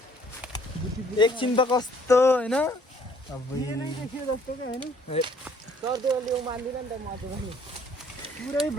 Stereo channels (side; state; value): both; normal; correlation 0.60